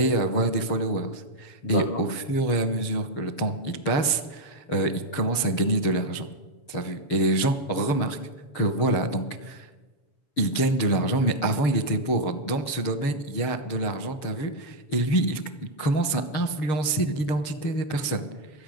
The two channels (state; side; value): late; right; 7.1 ms